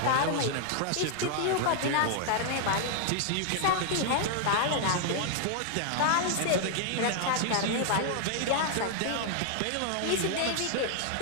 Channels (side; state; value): both; different; correlation 0.00